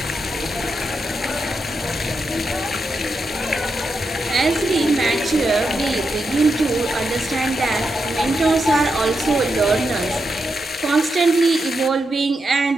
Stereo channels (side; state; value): both; normal; correlation 0.85